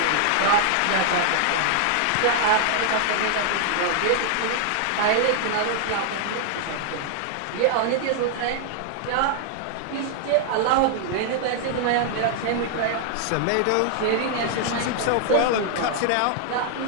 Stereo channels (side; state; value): both; different; correlation 0.00